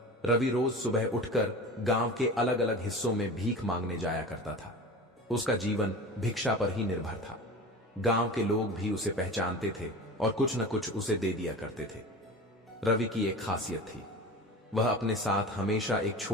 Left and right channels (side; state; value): both; normal; correlation 0.34